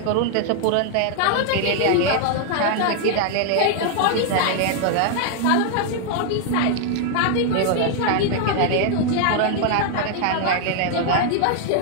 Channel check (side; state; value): both; different; correlation 0.00